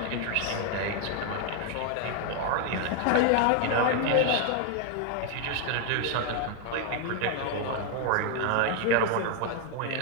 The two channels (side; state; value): both; different; correlation 0.01